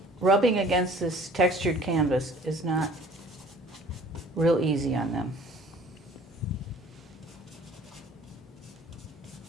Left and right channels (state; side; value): normal; both; correlation 0.51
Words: rubbing against this textured canvas is not real easy on them.